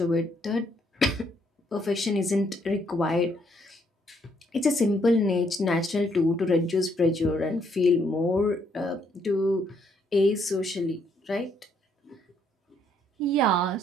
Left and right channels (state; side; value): normal; both; correlation 0.71